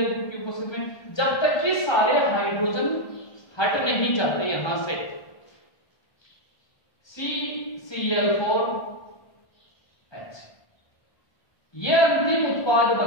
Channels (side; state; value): right; late; 1.3 ms